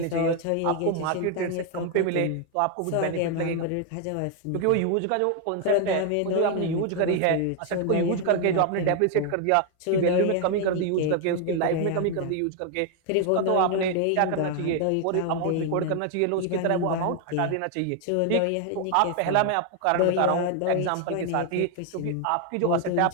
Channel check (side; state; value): both; different; correlation 0.01